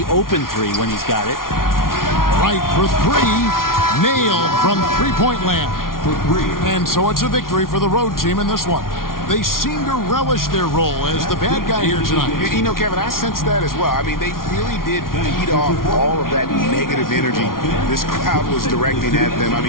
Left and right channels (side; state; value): right; late; 0.92 ms